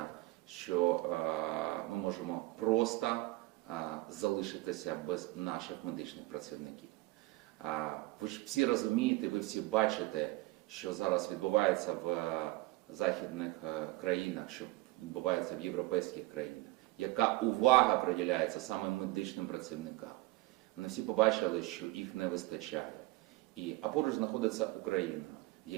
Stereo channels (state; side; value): quieter; left; 20.4 dB